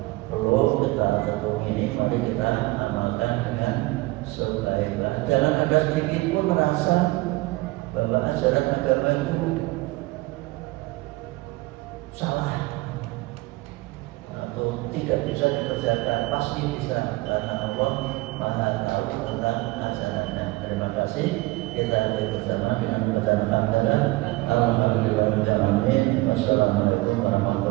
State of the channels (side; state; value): left; quieter; 21.3 dB